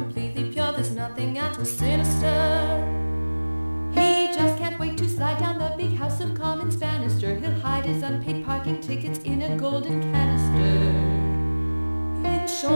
pure, there's nothing at all sinister. He just can't wait to slide down the big House of Commons banister. He'll hide his unpaid parking tickets in a golden canister. In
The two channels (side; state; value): both; inverted; correlation -1.00